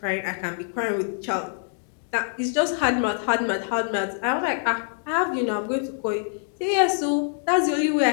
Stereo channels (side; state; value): right; silent; digital silence